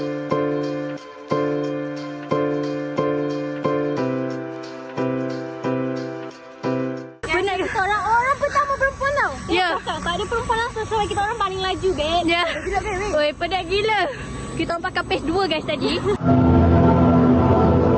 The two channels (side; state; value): both; identical; correlation 1.00